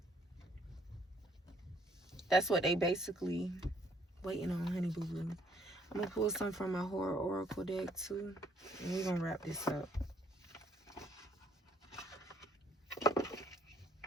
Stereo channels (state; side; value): normal; both; correlation 0.65